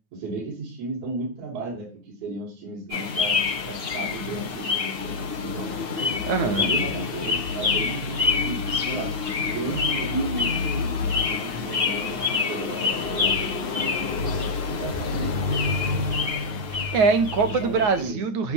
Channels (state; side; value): late; left; 9.4 ms